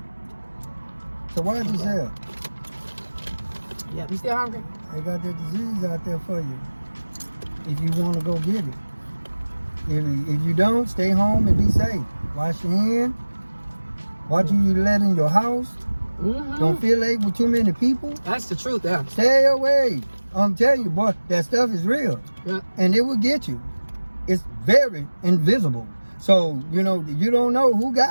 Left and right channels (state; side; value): inverted; both; correlation -1.00